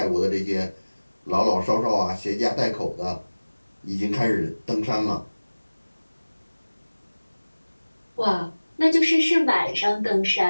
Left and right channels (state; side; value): inverted; both; correlation -1.00